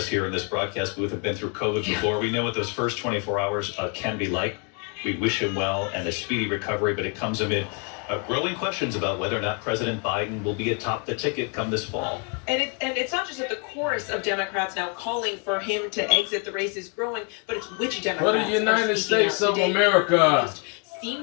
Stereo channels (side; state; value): right; quieter; 37.2 dB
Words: here in this broadcast booth have been through COVID before. We know what those first 24 hours can be like. We wish him well and a speedy recovery, but it comes amid growing questions about whether or not President Biden will be atop the ticket come this fall. And it's not just that the chorus of Democrats now calling for him to exit the race is growing, but it's which Democrats. For the United States of America.